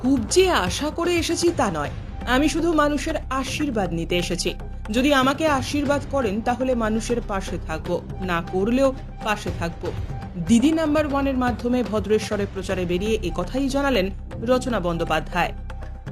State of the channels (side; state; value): both; identical; correlation 1.00